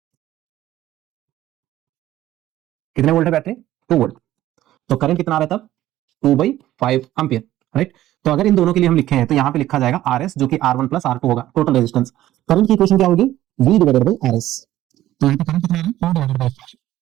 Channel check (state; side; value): quieter; left; 14.1 dB